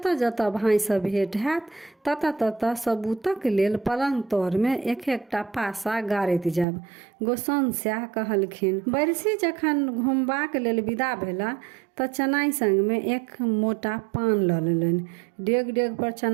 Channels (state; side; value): drops out; left; at 6.7 s